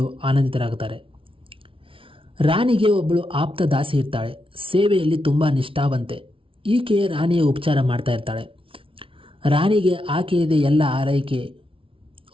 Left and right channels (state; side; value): late; left; 0.25 ms